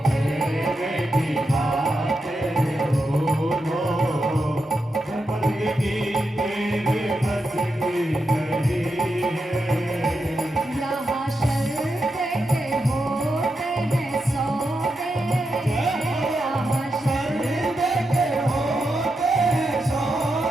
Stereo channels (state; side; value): normal; both; correlation 0.86